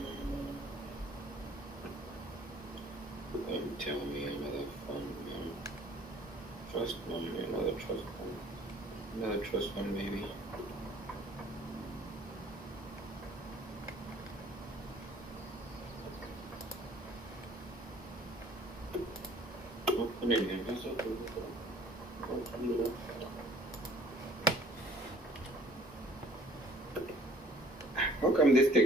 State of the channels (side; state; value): both; normal; correlation 0.54